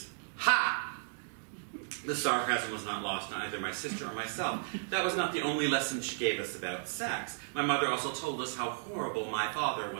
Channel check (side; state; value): left; silent; digital silence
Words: ha! The sarcasm was not lost on either my sister or myself. That was not the only lesson she gave us about sex. My mother also told us how horrible my father